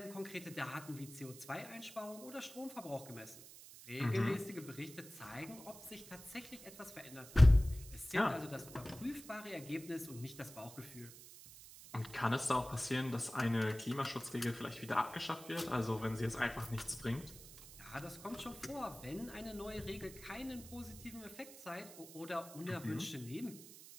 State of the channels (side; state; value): right; noise; hiss, 16 dB below the sound